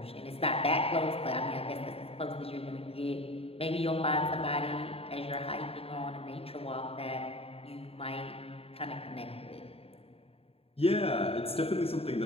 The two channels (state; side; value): late; right; 0.28 ms